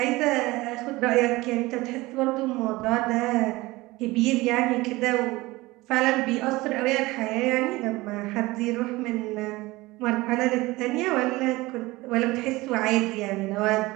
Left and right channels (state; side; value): quieter; left; 20.5 dB